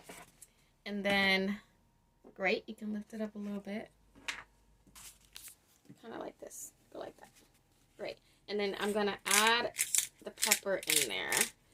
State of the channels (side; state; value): both; identical; correlation 1.00